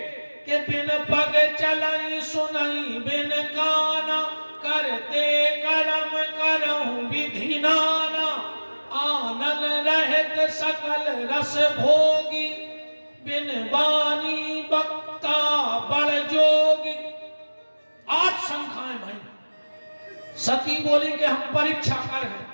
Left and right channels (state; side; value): inverted; both; correlation -1.00